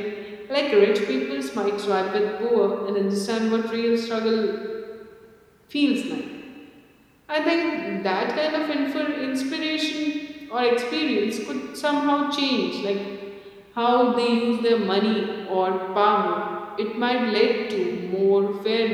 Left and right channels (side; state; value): both; identical; correlation 1.00